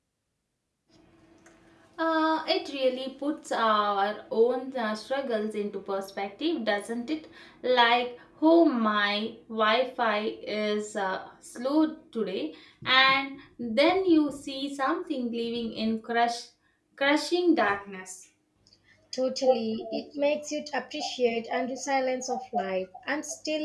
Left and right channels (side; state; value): both; identical; correlation 1.00